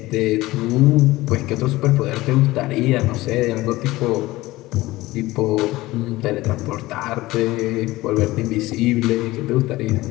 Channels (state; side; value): quieter; right; 18.6 dB